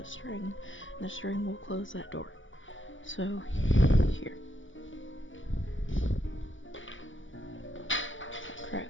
string, and the string will close that door. So here,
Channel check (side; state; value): right; late; 0.56 ms